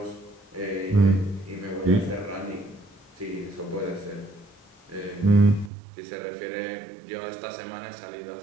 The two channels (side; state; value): left; drops out; at 5.7 s